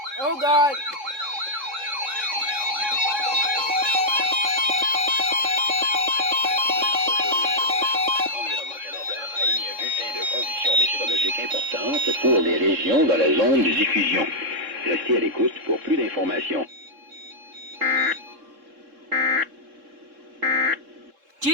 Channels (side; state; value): left; late; 3.7 ms